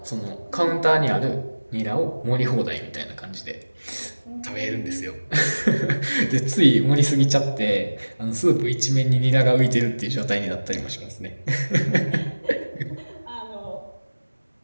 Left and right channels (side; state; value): both; inverted; correlation -1.00